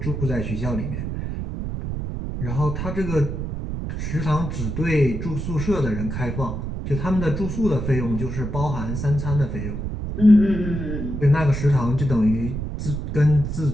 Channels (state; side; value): noise; right; rumble, 4 dB below the sound